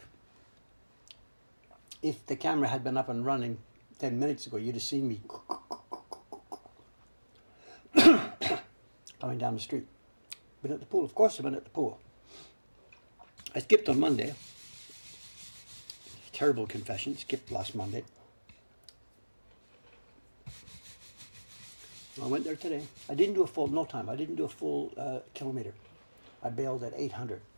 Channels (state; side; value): inverted; both; correlation -1.00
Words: If the camera had been up and running 10 minutes ago, you'd have seen me coming down the street. Been at the pool. Of course I've been at the pool. I skipped on Monday. Terrible confession. Skipped last Monday. I went there today. I didn't do a full, no time. I didn't do a full kilometer. I bailed at 800